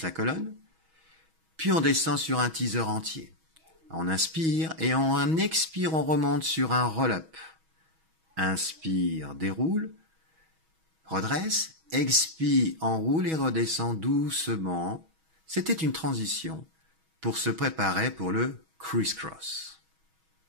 la colonne. Puis on descend sur un teaser entier. On inspire et on expire, on remonte sur un roll-up. Inspire, déroule. Redresse. Expire, enroule et redescend doucement. C'était une transition pour se préparer pour le criss-cross.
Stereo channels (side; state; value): left; late; 6.2 ms